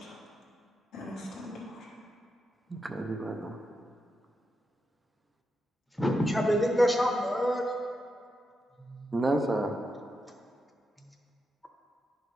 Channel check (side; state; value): both; normal; correlation 0.86